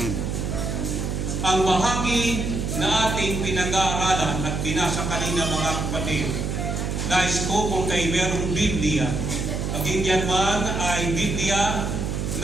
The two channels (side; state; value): right; noise; hum, 2 dB below the sound